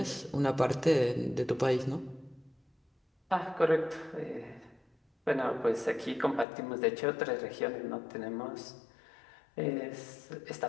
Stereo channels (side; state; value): right; drops out; at 6.5 s